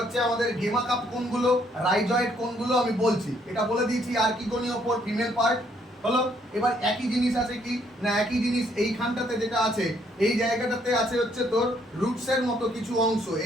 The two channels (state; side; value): normal; both; correlation 0.68